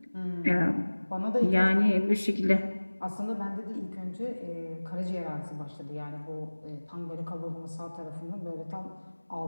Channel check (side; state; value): both; inverted; correlation -1.00